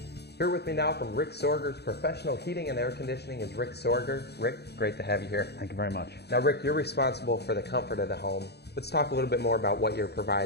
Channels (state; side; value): late; right; 0.48 ms